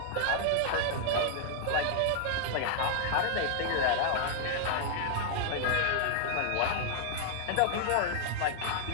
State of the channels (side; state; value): both; different; correlation -0.01